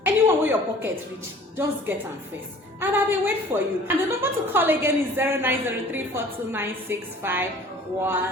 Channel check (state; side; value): normal; both; correlation 0.49